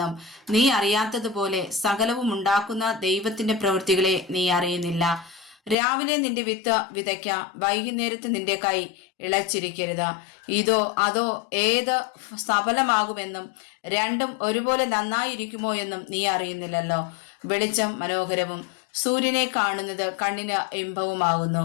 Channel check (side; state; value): right; drops out; at 5.8 s